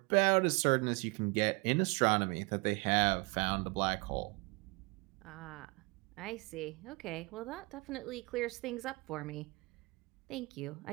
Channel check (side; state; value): left; quieter; 27.7 dB